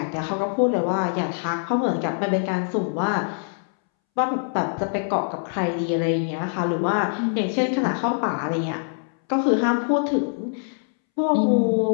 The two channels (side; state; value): right; silent; 63 dB below the other